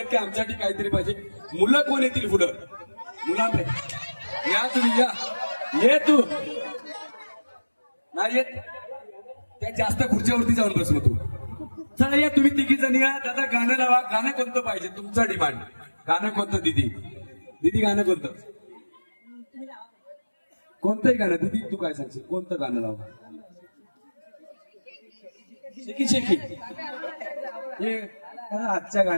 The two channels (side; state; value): both; inverted; correlation -1.00